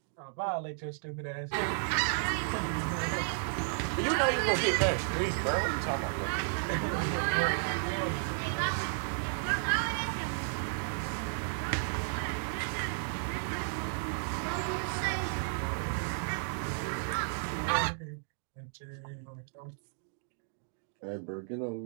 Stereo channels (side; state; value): left; silent; digital silence